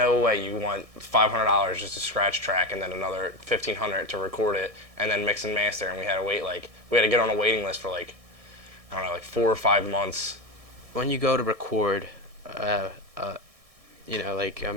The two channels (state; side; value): late; left; 1.6 ms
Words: way you want $500 just to scratch track and then another $1,500 to record it and then mix and master. And we had to wait we had to get on a waiting list for I don't know, 4 or 5 months. When you go to record, like